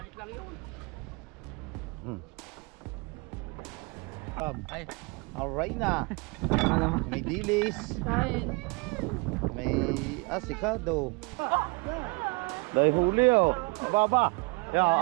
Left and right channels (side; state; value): left; quieter; 28.7 dB